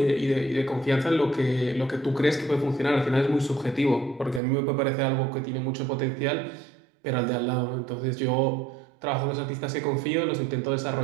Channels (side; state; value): left; drops out; at 4.4 s